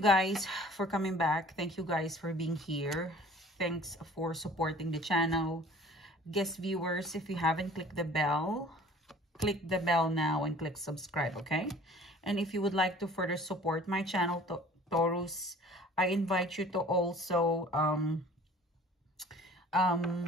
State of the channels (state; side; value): normal; both; correlation 0.49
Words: for coming back. Thank you guys for being here. Thanks for supporting the channel. Guest viewers, if you haven't clicked the bell, click the bell now and click subscribe, okay? And if you would like to further support my channel, Taurus, I invite you to also,